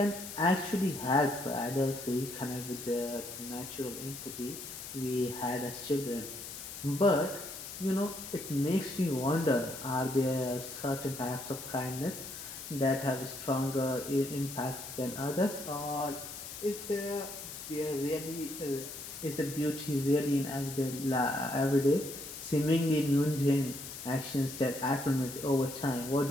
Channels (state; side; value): noise; left; hiss, 10 dB below the sound